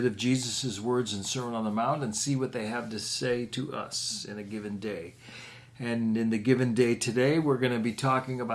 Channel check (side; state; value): both; identical; correlation 1.00